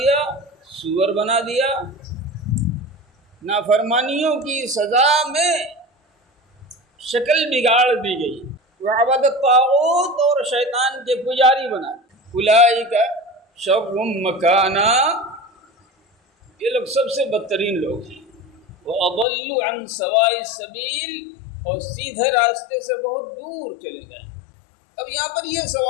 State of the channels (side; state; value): right; drops out; at 19.2 s